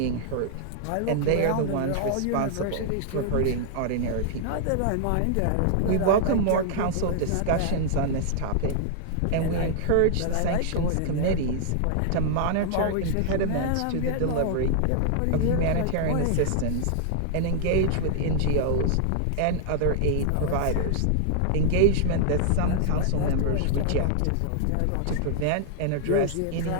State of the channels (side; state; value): both; different; correlation -0.01